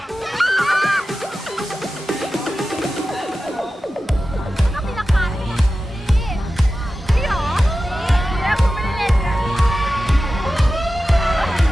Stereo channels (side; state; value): both; normal; correlation 0.94